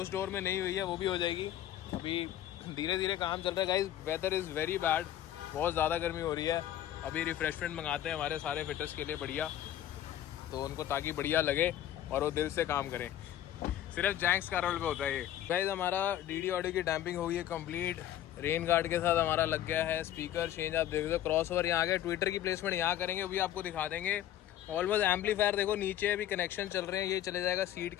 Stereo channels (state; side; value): quieter; right; 12.0 dB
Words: डोर में नहीं हुई है, वो भी हो जाएगी। अभी धीरे धीरे काम चल रहा है guys. Weather is very bad, बहुत ज़्यादा गर्मी हो रही है। अभी रिफ्रेशमेंट मंगाते हैं हमारे सारे फिटर्स के लिए बढ़िया, तो उनको ताकि बढ़िया लगे और वो दिल से काम करें। सिर्फ जैंक्स का रोल पे होता है ये। गाइस हमारा डीडी ऑडियो की डैम्पिंग हो गई है कंप्लीट, रेन गार्ड के साथ हमारा लग गया है, स्पीकर चेंज आप देख दो, क्रॉस ओवर यहाँ गए, ट्विटर की प्लेसमेंट यहाँ करेंगे, वो भी आपको दिखा देंगे। ऑलमोस्ट एम्पलीफायर देखो नीचे अभी कनेक्शन चल रहे हैं, ये चले जाएगा सीट